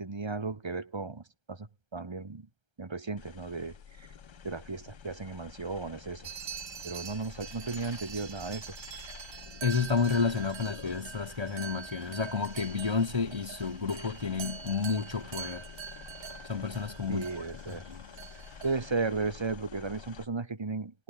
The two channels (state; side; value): late; left; 1.3 ms